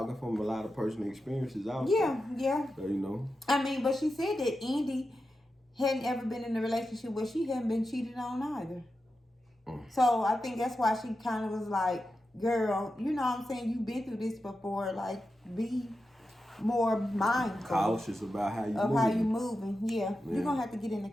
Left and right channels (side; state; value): both; normal; correlation 0.90